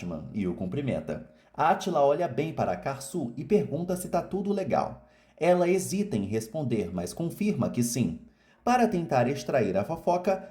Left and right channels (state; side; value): identical; both; correlation 1.00